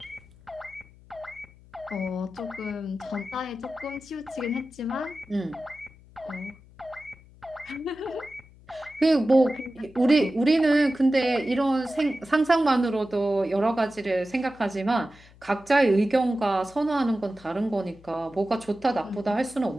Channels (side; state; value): left; noise; hum, 24 dB below the sound